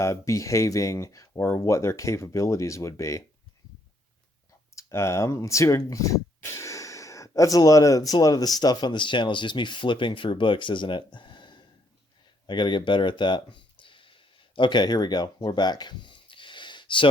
behaving or what their capabilities would be. Let's see. That's a lot of the stuff on this channel is just me flipping through books, isn't it? I got to get better at that. Okay, here we go. We're back.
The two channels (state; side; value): normal; both; correlation 0.71